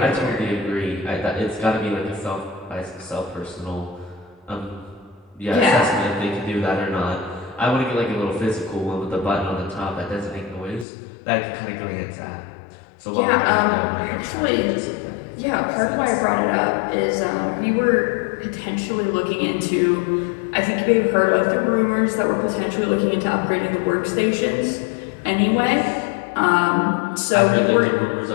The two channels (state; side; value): drops out; right; at 10.9 s